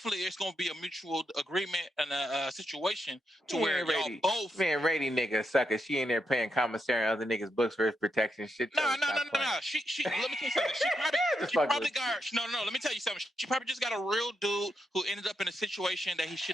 it's gonna be a mutual agreement and a situation to where y'all both. Man, Rady nigga sucker. She in there paying commissary on other niggas' books for his protection. Shit. No. She let me tell you something. She probably got no. Let me tell you something. She probably just got a real dude who ended up in a situation that he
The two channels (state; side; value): normal; both; correlation 0.82